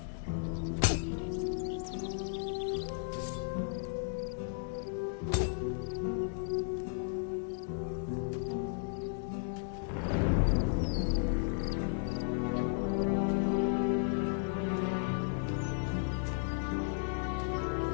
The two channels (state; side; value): silent; right; digital silence